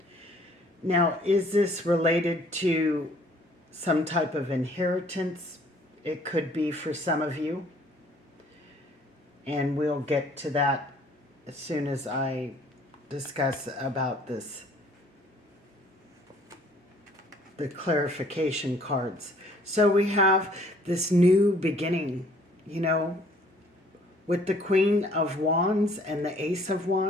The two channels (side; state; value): both; normal; correlation 0.58